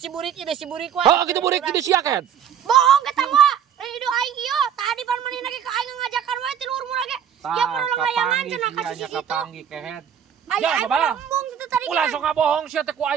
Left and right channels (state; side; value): quieter; left; 8.6 dB